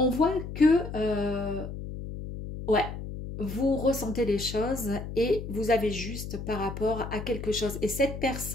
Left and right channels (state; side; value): noise; left; hum, 8 dB below the sound